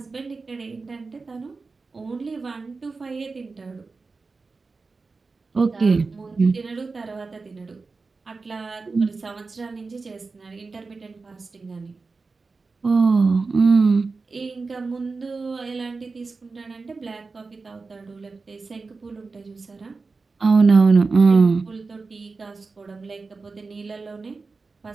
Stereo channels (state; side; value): quieter; left; 4.1 dB